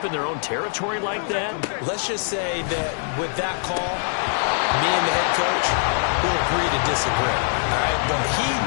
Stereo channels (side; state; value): right; silent; 63 dB below the other